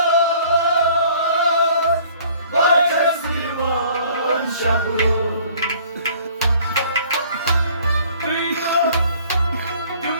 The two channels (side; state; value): both; inverted; correlation -0.55